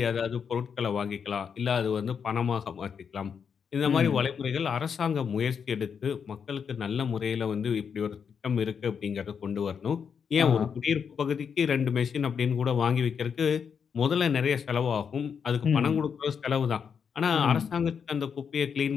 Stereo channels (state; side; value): quieter; right; 6.8 dB